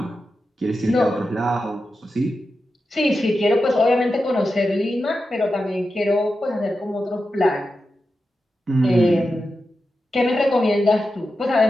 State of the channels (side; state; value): both; normal; correlation 0.90